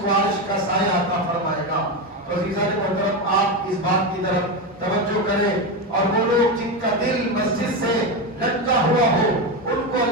کو عرش کا سایہ عطا فرمائے گا۔ تو عزیزان محترم، آپ اس بات کی طرف توجہ کریں، اور وہ لوگ جن کا دل مسجد سے لٹکا ہوا ہو ان کو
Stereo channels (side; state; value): both; normal; correlation 0.14